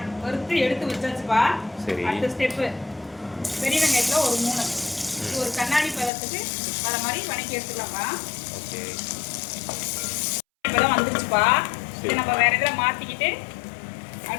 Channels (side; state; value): right; drops out; at 6.1 s